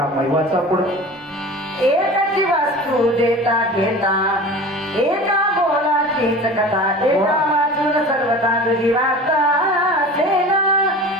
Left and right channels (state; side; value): normal; both; correlation 0.37